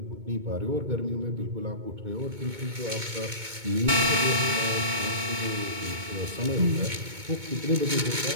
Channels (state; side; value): late; left; 2.2 ms